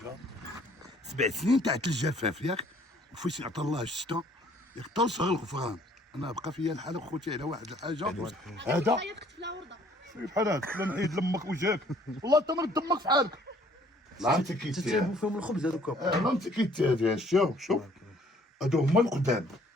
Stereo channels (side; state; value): both; normal; correlation 0.59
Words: 7 سنين تاع الجفاف ياك، وفاش عطا الله الشتا ياك طول شهر الغفران. انا بقى فيا الحاله خوتي على واحد الحاجه هذا بحال هكا لا نعيد لامك وجهك والله تمرد دمك في حالك. لا انت كيتي تتعبوا فيهم الخبز هذوك. لا انت كيتي شوف هادو هما القدام.